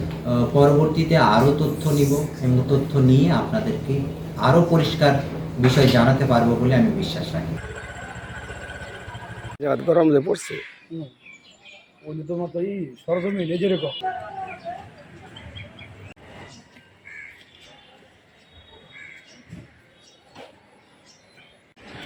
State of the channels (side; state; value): both; identical; correlation 1.00